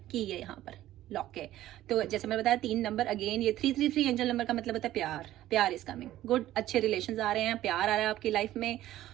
की है यहाँ पर लॉक है, तो जैसे मैं बताया 3 नंबर, अगेन ये 333 एंजल नंबर का मतलब होता है प्यार इज कमिंग, गुड, अच्छे रिलेशंस आ रहे हैं, प्यार आ रहा है आपकी लाइफ में।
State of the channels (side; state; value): left; quieter; 14.1 dB